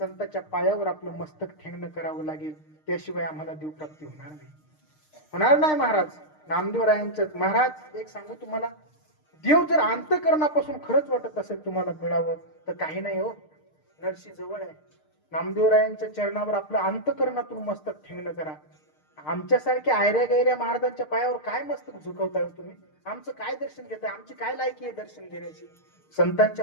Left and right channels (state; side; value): late; right; 6.6 ms